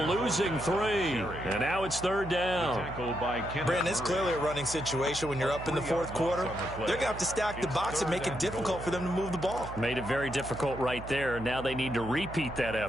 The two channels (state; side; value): noise; right; hum, 11 dB below the sound